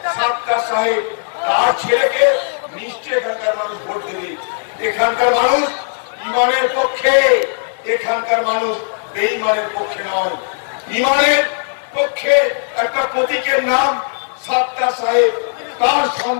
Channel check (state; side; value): silent; right; digital silence